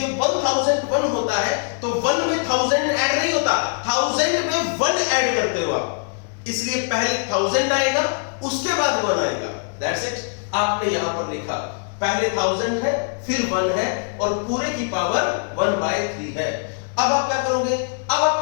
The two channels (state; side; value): silent; right; 64 dB below the other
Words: 1001 होता है तो 1 में 1000 ऐड नहीं होता, 1000 में 1 ऐड करते हो आप। इसलिए पहले 1000 आएगा, उसके बाद 1 आएगा। That's it. आपने यहां पर लिखा पहले 1000 है, फिर 1 है, और पूरे की पावर 1/3 है। अब आप क्या करोगे? अब